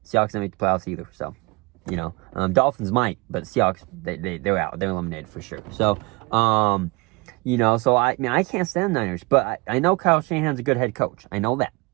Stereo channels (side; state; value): left; quieter; 26.1 dB